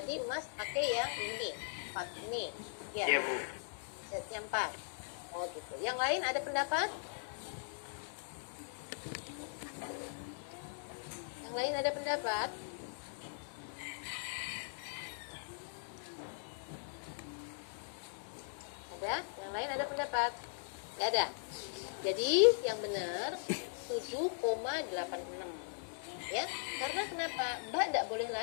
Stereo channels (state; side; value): silent; right; digital silence